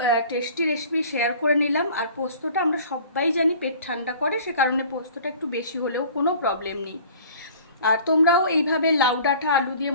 টেস্টি রেসিপি শেয়ার করে নিলাম। আর পোস্তটা আমরা সবাই জানি পেট ঠান্ডা করে, সে কারণে পোস্তটা একটু বেশি হলেও কোনো প্রবলেম নেই। আর তোমরাও এইভাবে লাউ ডাঁটা আলু দিয়ে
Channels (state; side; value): inverted; both; correlation -0.47